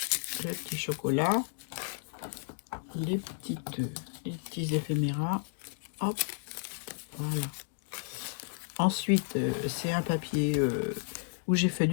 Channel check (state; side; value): silent; right; digital silence